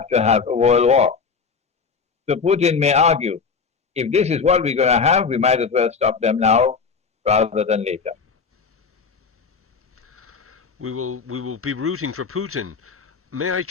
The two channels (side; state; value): right; quieter; 5.4 dB